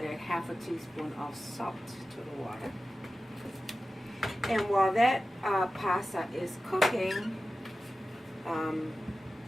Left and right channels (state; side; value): normal; both; correlation 0.95